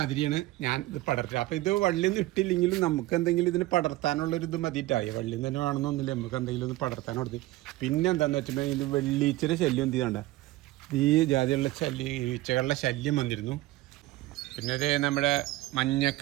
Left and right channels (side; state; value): left; quieter; 17.8 dB